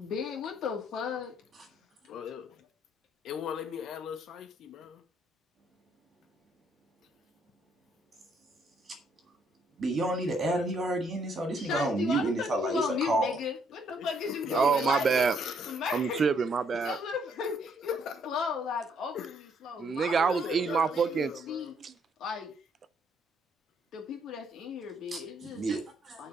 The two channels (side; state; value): both; normal; correlation 0.69